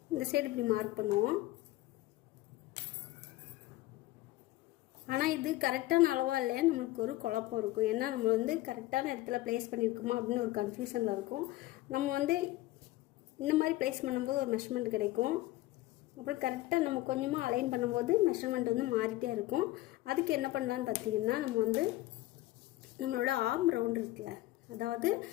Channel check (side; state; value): right; quieter; 17.4 dB